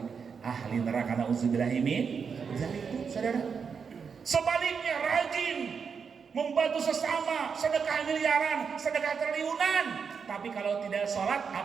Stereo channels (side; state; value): left; quieter; 6.1 dB